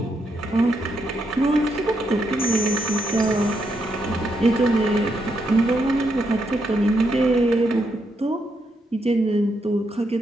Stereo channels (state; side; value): normal; both; correlation 0.80